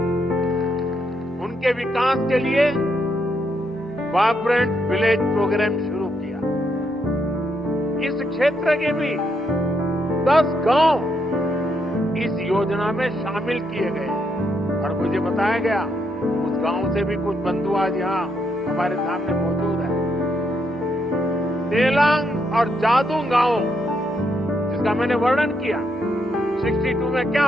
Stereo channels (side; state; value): both; normal; correlation 0.78